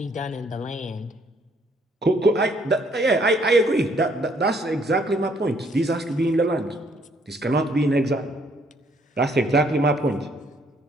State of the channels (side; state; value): both; normal; correlation 0.66